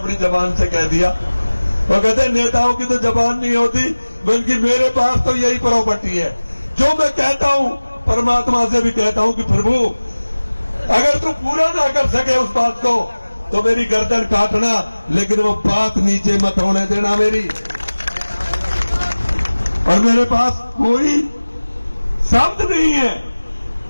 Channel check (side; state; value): both; inverted; correlation -1.00